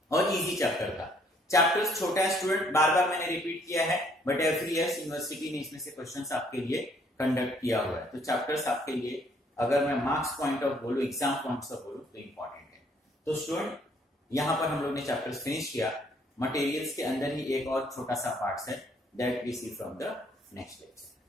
और इजी चैप्टर था. चैप्टर्स छोटा है स्टूडेंट, बार बार मैंने रिपीट किया है, बट एवरी ईयर यूनिवर्सिटी ने इसमें से क्वेश्चंस आपके लिए कंडक्ट किया हुआ है. तो चैप्टर्स आपके लिए अगर मैं मार्क्स पॉइंट ऑफ बोलूं, एग्जाम पॉइंट्स ऑफ बोलूं तो इंपॉर्टेंट है. तो स्टूडेंट यहां पर हम लोग ने चैप्टर्स फिनिश किया. मटेरियल्स के अंदर ही एक और छोटा सा पार्ट है that we see from the next lecture.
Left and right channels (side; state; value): both; normal; correlation 0.64